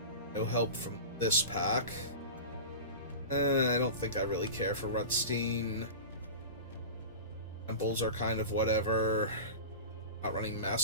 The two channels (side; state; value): both; inverted; correlation -0.30